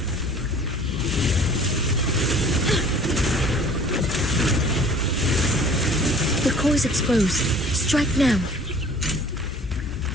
The core is exposed. Strike now.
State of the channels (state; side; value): normal; both; correlation 0.49